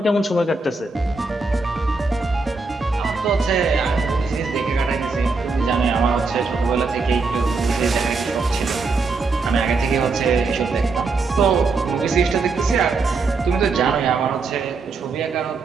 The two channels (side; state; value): left; quieter; 4.0 dB